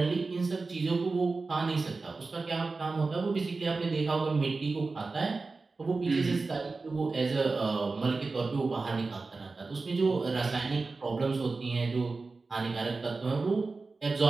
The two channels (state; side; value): quieter; left; 3.9 dB